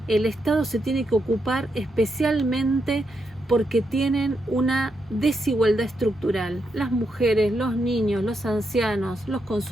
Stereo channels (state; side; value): normal; both; correlation 0.82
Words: el Estado se tiene que ocupar especialmente porque tienen una desigualdad estructural. Las mujeres, los niños, los ancianos, los